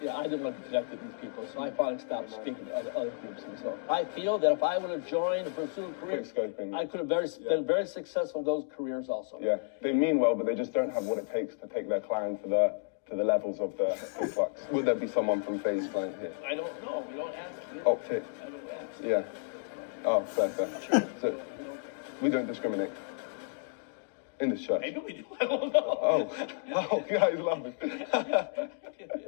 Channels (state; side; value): silent; right; digital silence